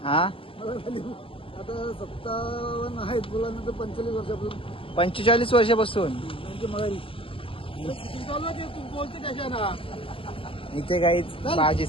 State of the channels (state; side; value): late; right; 0.26 ms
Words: हा मला झाली आता 57 आहेत. मुलांनंतर 45 वर्षापासून 45 वर्षापासून त्यांची माहिती तू बोलते कशा ना. इथे काहीच